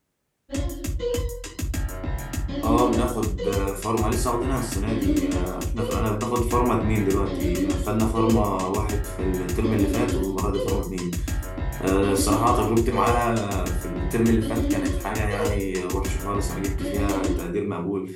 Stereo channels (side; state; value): both; identical; correlation 1.00